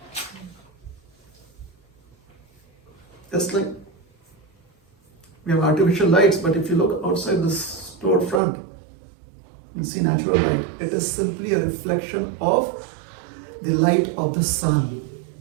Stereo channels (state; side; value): drops out; left; at 8.4 s